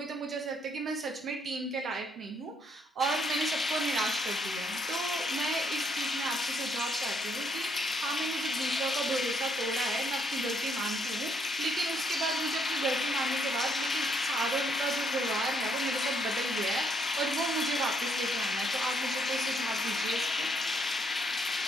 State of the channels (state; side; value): normal; both; correlation 0.71